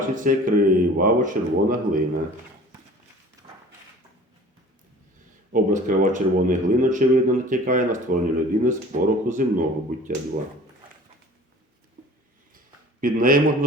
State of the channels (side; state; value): both; normal; correlation 0.45